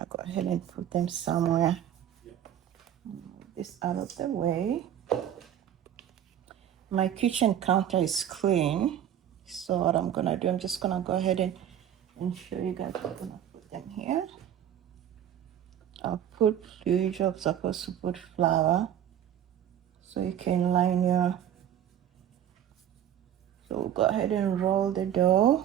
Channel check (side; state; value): left; quieter; 10.3 dB